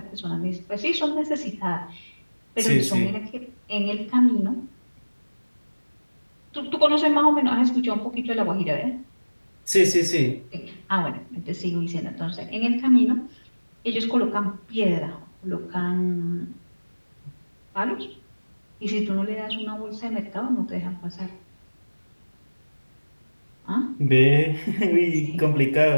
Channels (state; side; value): inverted; both; correlation -1.00